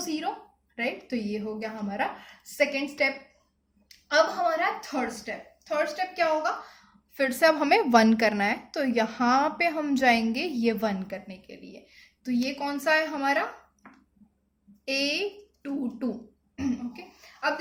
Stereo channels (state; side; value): identical; both; correlation 1.00